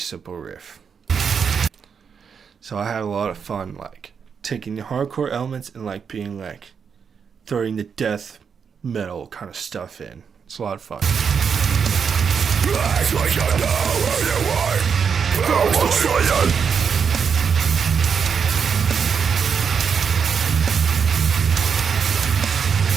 riff. So I had a lot of fun, like taking the hardcore elements and like being like throwing the death metal kind of stuff in. It's a lot of fun. Act like you know where you are.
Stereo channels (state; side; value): quieter; left; 6.5 dB